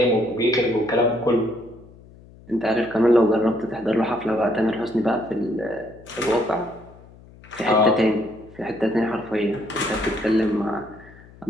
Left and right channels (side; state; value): left; noise; hum, 23 dB below the sound